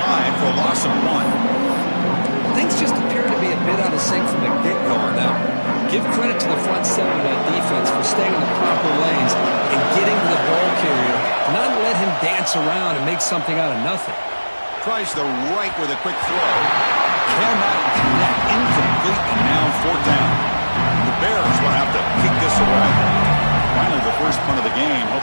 for a loss of 1. Things just appear to be a bit out of sync from the get-go on that one. Give credit to the front seven of that defense for staying in the proper lanes and getting to the ball carrier, not let him dance around and make something out of nothing. Tries the right with a quick throw. Cannot connect. Incomplete, and now 4th down. The Bears will have to kick this away. Finally, the first punt of the game,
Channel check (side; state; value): both; inverted; correlation -1.00